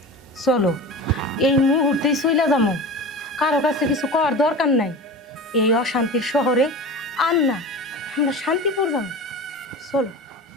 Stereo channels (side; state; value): both; normal; correlation 0.32